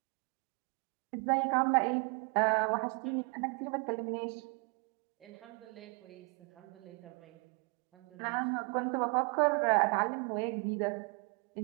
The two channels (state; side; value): quieter; left; 33.7 dB